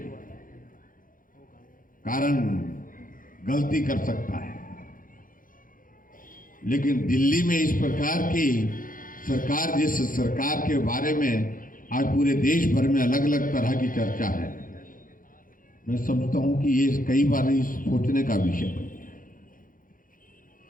कारण गलती कर सकता है, लेकिन दिल्ली में इस प्रकार की सरकार, जिस सरकार के बारे में आज पूरे देश भर में अलग अलग तरह की चर्चा है, मैं समझता हूं कि ये कई बार सोचने का विषय बन गया।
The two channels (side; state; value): right; late; 0.40 ms